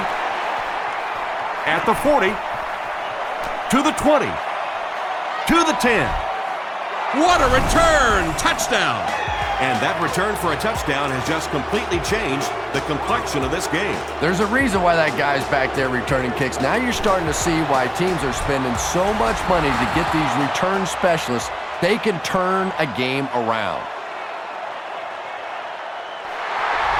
At the 40. To the 20. To the 10. What a return! Touchdown! And that return for a touchdown has just completely changed the complexion of this game. There's a reason why that guy's back there returning kicks. Now you're starting to see why teams are spending so much money to get these return specialists. They can turn a game around.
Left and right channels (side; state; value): both; identical; correlation 1.00